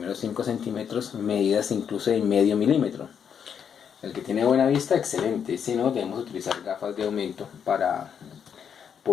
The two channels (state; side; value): quieter; right; 7.7 dB